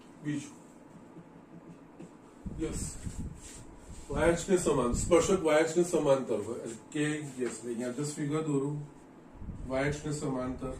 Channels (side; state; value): both; identical; correlation 1.00